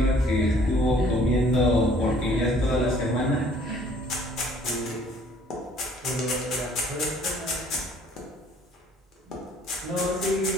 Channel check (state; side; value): normal; both; correlation 0.57